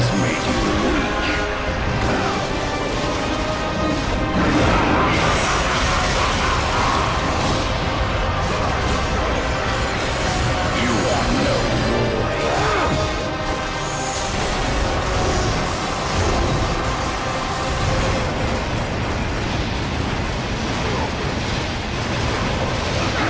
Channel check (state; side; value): identical; both; correlation 1.00